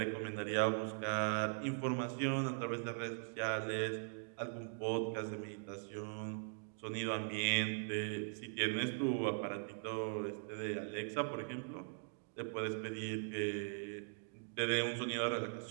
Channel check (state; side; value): silent; left; digital silence